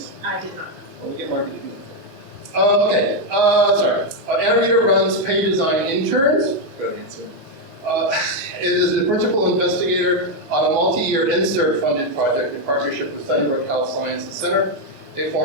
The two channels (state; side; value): normal; both; correlation 0.03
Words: I did not. Well, we get marketing. Okay, sorry. Ana Rita runs Pay Design Interns. Good answer. It is the principal investigator on a multi-year INSERT-funded project in partnership with Sunnybrook Health Sciences Center, a